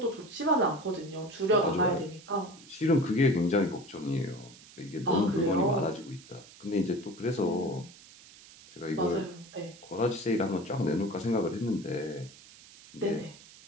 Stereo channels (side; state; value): right; noise; hiss, 21 dB below the sound